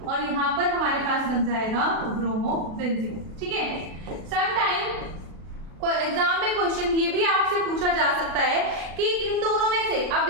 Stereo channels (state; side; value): late; left; 36 ms